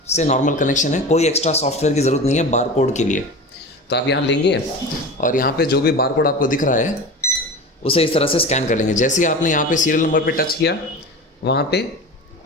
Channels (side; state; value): both; normal; correlation 0.31